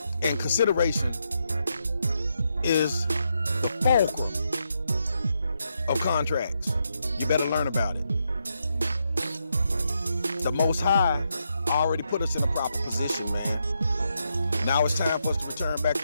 And consideration is the fulcrum of contracts. You better learn about it. The Most High already put us in a proper position, man. Now it's time for us to return back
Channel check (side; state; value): both; inverted; correlation -0.81